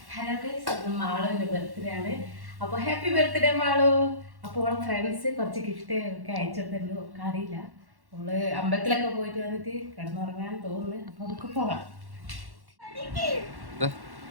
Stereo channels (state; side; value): late; left; 1.1 ms